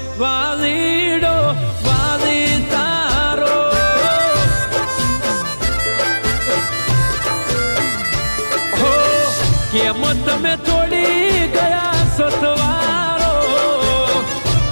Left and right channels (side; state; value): both; inverted; correlation -1.00